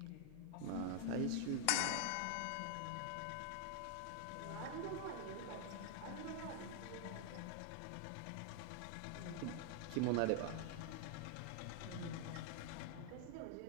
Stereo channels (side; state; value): both; different; correlation 0.00